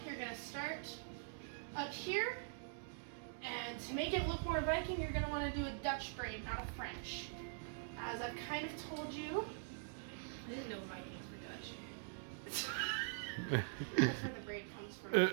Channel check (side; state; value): left; silent; digital silence